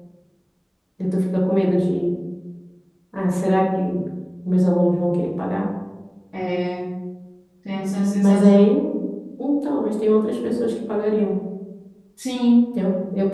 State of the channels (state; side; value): identical; both; correlation 1.00